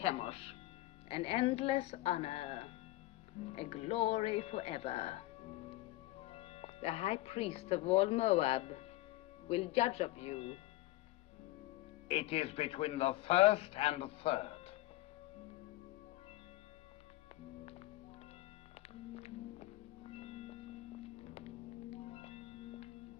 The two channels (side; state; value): right; quieter; 17.7 dB